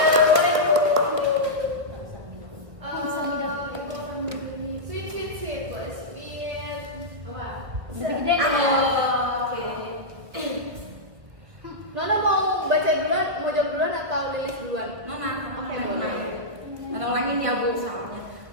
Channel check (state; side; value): late; left; 1.7 ms